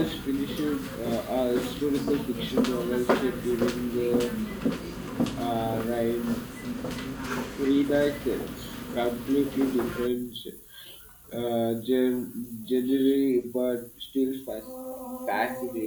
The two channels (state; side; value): identical; both; correlation 1.00